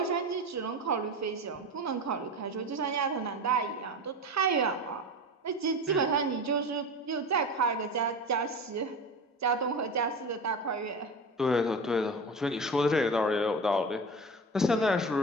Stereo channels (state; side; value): normal; both; correlation 0.29